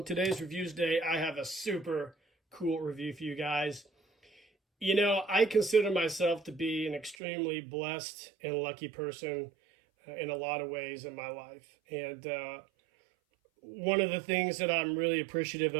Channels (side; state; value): left; drops out; at 7.2 s